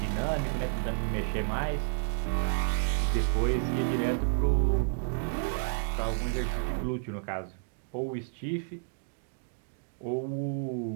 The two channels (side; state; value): left; silent; digital silence